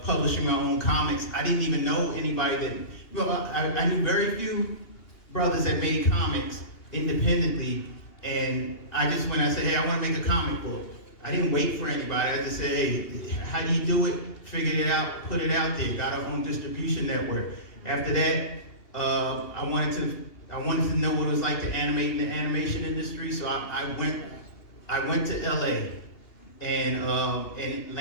publishing my own comics. I didn't even know anybody that, you know, I knew very few brothers that made comics independently, and I just, when I said, hey, I want to make a comic book, I didn't wait for anybody. I just said, hey, how do you do it? Figured it out, put it out there, got our own distribution network. After that, I wanted to know what it was like to animate in the animation industry, so I went to LA and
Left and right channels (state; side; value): late; right; 2.9 ms